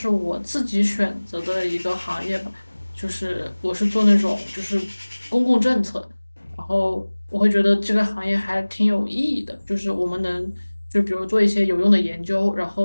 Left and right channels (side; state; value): both; inverted; correlation -1.00